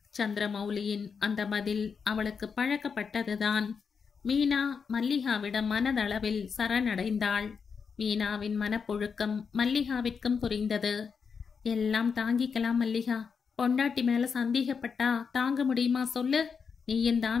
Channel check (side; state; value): right; quieter; 5.9 dB